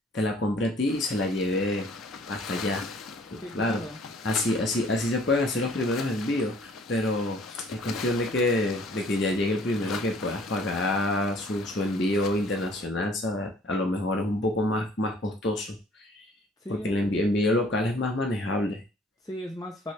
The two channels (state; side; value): normal; both; correlation 0.56